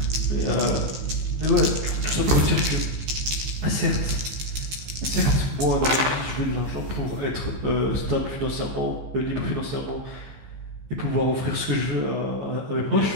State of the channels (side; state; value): left; late; 15 ms